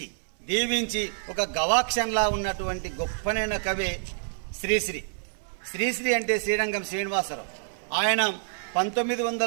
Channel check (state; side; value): silent; left; 59 dB below the other